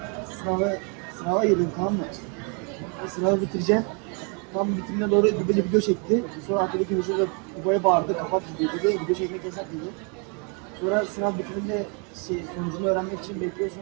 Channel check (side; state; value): left; quieter; 36.2 dB